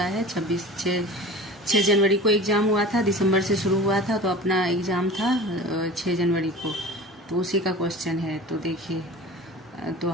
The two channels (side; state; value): both; normal; correlation 0.37